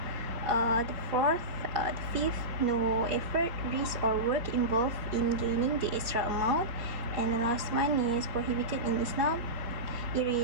The fifth, no effort, risk, or work involved in gaining the extra amount. And the last one is prohibited in Islam. It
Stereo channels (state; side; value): late; left; 4.2 ms